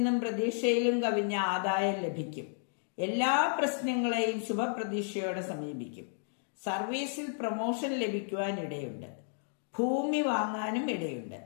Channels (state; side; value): silent; right; digital silence